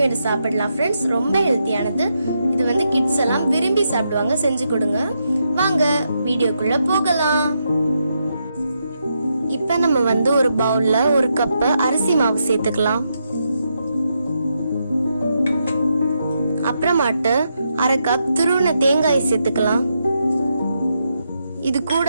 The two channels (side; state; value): both; inverted; correlation -0.82